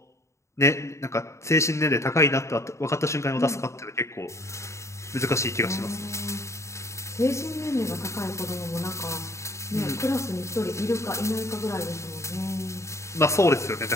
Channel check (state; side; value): late; right; 0.14 ms